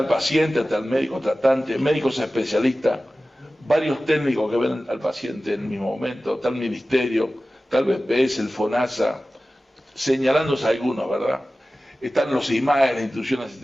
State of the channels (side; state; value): both; normal; correlation 0.96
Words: paciente, está el médico tratante, médicos especialistas, varios técnicos que ven al paciente en el mismo momento, está el ministerio, está el BPS, el FONASA, señalándose algunos, ¿verdad? Están los IMAE, la Institución de